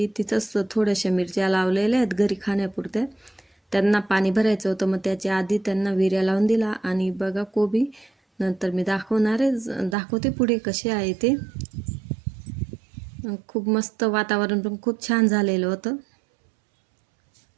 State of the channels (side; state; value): left; drops out; at 10.0 s